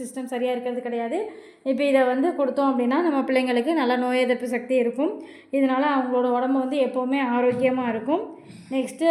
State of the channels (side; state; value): both; identical; correlation 1.00